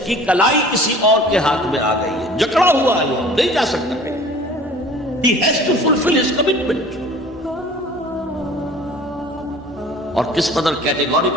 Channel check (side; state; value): both; normal; correlation 0.46